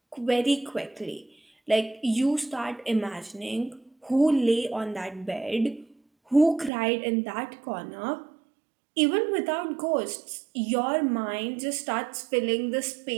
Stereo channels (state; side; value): drops out; left; at 6.7 s